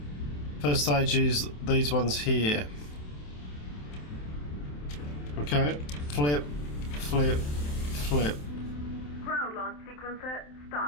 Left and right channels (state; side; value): late; right; 27 ms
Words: First stage is these ones here. Okay. Flip, flip, flip. Ground launch sequencer